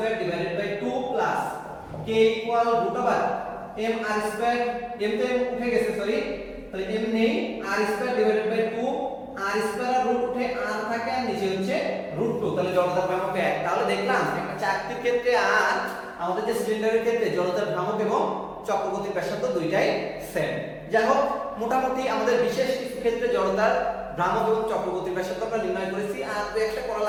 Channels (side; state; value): both; identical; correlation 1.00